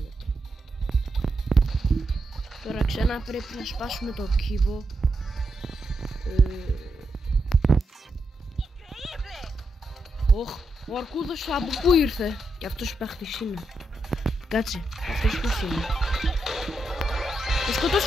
Τώρα ξανά πρέπει να σπάσουμε το κύβο. Ο αρκούδος από πού ήρθε. Και αυτός παίχτης είναι. Κάτσε, αυτός ποιος είναι. Το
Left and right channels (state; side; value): normal; both; correlation 0.84